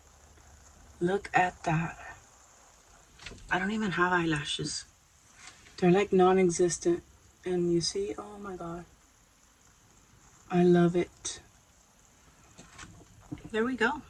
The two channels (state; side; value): identical; both; correlation 1.00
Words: Look at that. I don't even have eyelashes. They're like non-existent. And you see, oh my God. I love it. There we go.